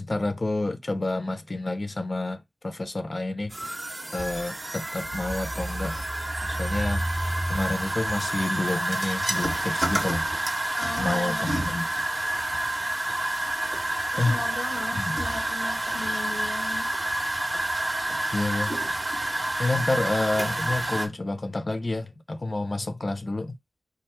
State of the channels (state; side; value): normal; both; correlation 0.96